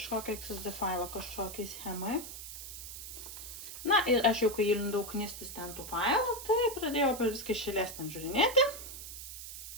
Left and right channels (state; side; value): noise; right; hiss, 10 dB below the sound